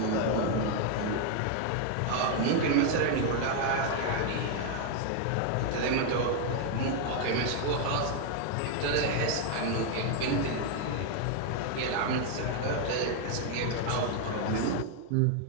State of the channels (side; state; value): both; different; correlation 0.01